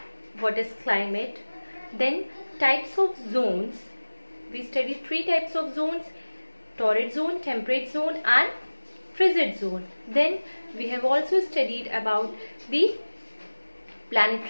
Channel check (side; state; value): both; inverted; correlation -1.00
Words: what is climate, then types of zones. We studied 3 types of zones: torrid zone, temperate zone and frigid zone. Then we have also studied about the